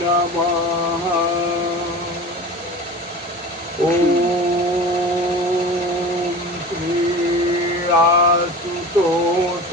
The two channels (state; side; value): normal; both; correlation 0.36